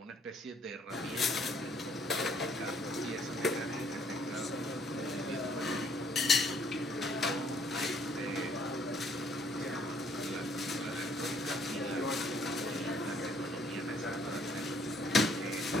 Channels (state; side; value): normal; both; correlation 0.64